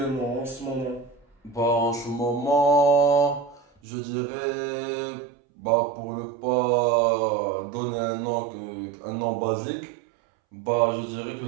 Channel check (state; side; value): drops out; left; at 3.7 s